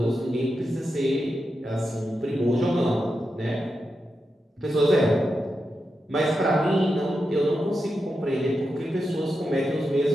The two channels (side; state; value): both; normal; correlation 0.88